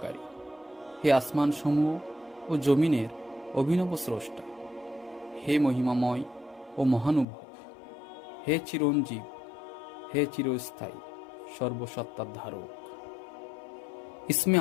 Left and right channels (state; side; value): drops out; right; at 7.2 s